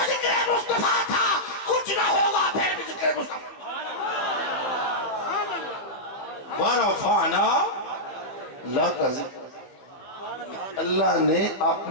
ذکر مصطفیٰ تھا، کچھ نہ ہوگا پھر بھی ذکر مصطفیٰ۔ ورفعنا لک ذکر، اللہ نے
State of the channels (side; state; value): right; late; 15 ms